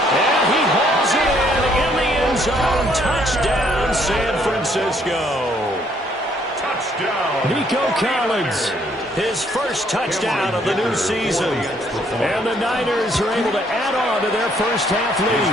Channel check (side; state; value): both; normal; correlation 0.67